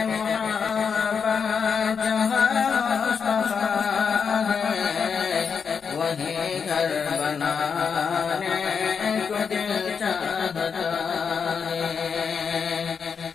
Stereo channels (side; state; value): right; quieter; 6.2 dB